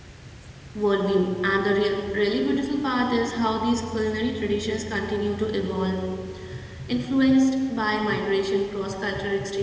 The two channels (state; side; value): identical; both; correlation 1.00